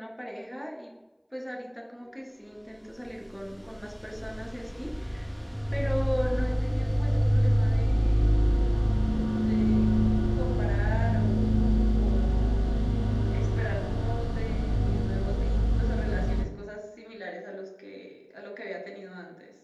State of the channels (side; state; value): both; identical; correlation 1.00